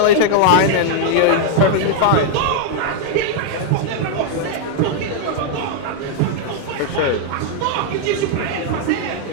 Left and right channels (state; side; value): different; both; correlation 0.00